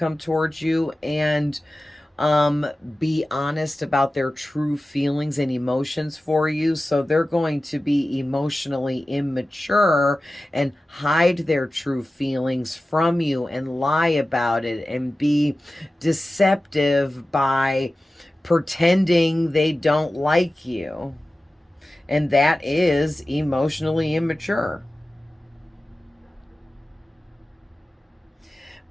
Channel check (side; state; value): both; normal; correlation 0.95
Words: towards you, and be honest about their true feelings and emotions for you. So they're going to be emotionally immature and hide their true feelings from you and lie about it and be deceptive by pretending they don't like you. And that is emotionally immature.